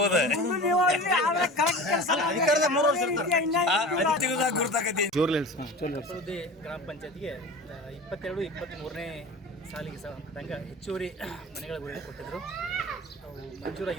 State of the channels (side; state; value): both; normal; correlation 0.35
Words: ಗ್ರಾಮ ಪಂಚಾಯತ್ಗೆ 22-23ನೇ ಸಾಲಿಗೆ ಸಂಬಂಧಪಟ್ಟಂಗೆ ಹೆಚ್ಚುವರಿ ಮನೆಗಳ ಗುರಿ ಕೊಟ್ಟಿದ್ದರು. ಅವು